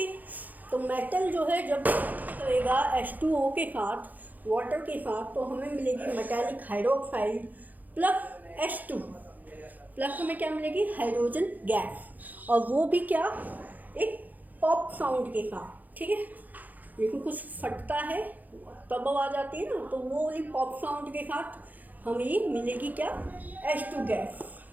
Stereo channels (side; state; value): left; late; 0.082 ms